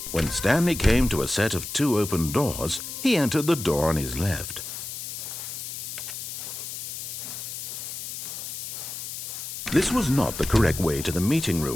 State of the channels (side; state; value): left; noise; hiss, 7 dB below the sound